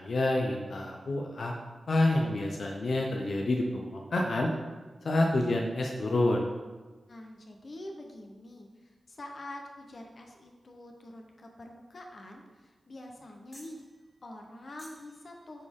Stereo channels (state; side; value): normal; both; correlation 0.94